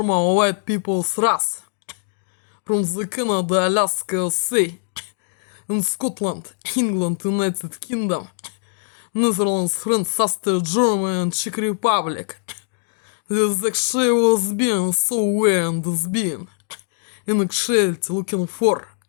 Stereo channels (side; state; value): right; silent; digital silence